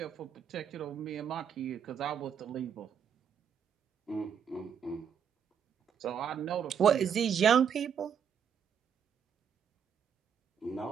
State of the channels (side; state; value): left; quieter; 7.8 dB